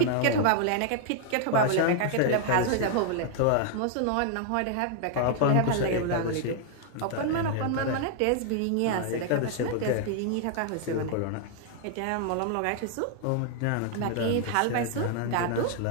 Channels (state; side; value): different; both; correlation 0.00